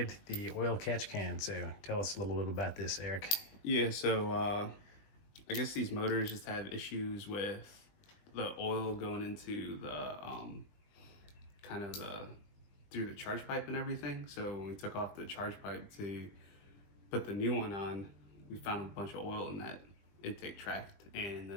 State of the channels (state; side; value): late; right; 20 ms